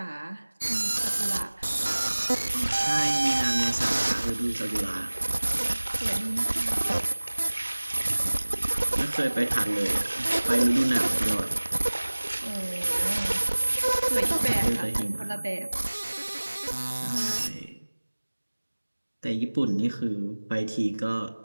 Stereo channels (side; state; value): both; inverted; correlation -1.00